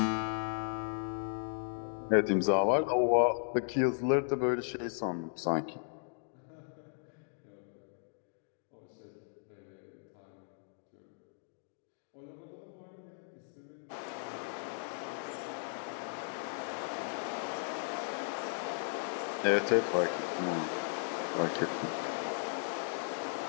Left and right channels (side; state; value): right; silent; digital silence